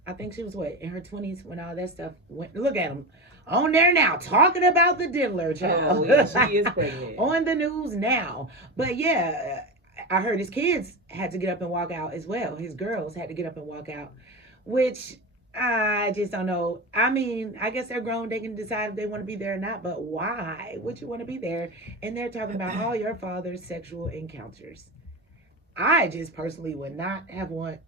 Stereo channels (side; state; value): both; normal; correlation 0.22